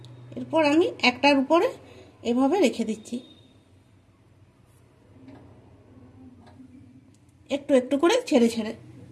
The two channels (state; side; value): identical; both; correlation 1.00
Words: এরপর আমি একটার উপরে এভাবে রেখে দিচ্ছি, একটু একটু করে ছেড়ে ছেড়ে।